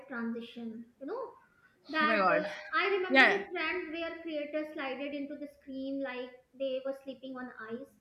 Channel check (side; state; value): both; identical; correlation 1.00